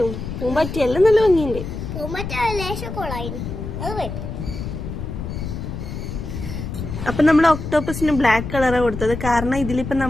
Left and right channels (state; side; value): noise; left; rumble, 6 dB below the sound